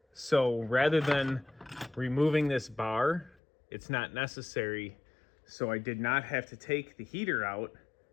So rather than removing this bar, it's not necessary. So I did not have to take the heater out,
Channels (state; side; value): drops out; right; at 3.4 s